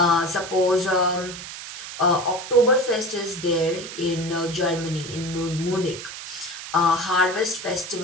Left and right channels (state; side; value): noise; right; hiss, 10 dB below the sound